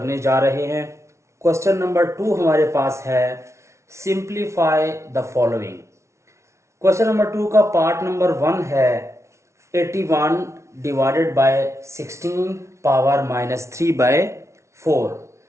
जा रहे हैं। क्वेश्चन नंबर 2 हमारे पास है simplify the following. Question number 2 का पार्ट नंबर 1 है 81 divided by 16 power minus 3 by 4।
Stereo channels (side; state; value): left; late; 0.13 ms